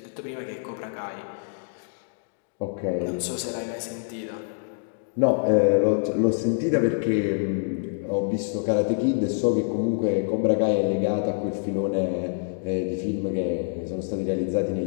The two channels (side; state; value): right; silent; digital silence